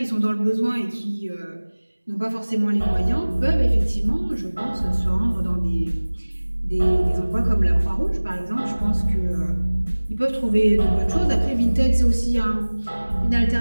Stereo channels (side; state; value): both; inverted; correlation -1.00